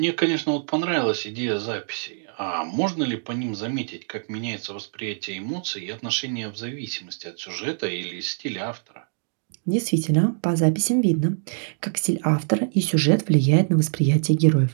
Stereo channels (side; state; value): left; silent; digital silence